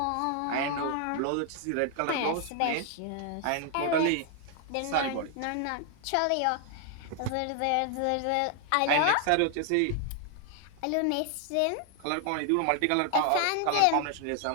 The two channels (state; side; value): different; both; correlation 0.00